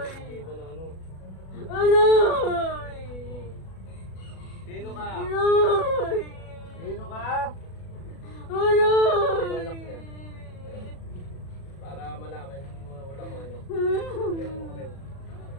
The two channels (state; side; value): late; right; 37 ms